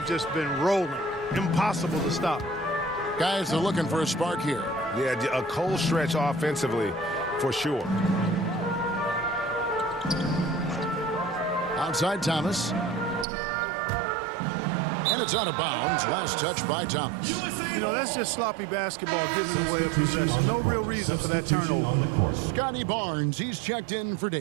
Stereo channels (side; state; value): left; drops out; at 13.2 s